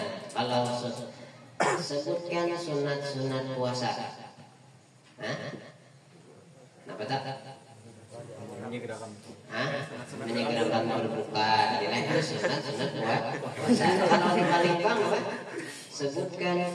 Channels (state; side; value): identical; both; correlation 1.00